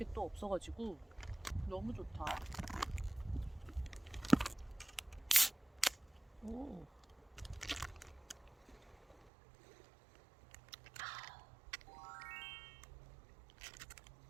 또 없어가지고 너무 좋다. 오.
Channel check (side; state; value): left; drops out; at 9.3 s